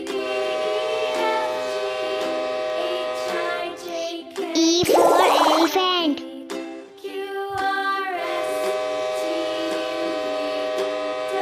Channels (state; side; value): identical; both; correlation 1.00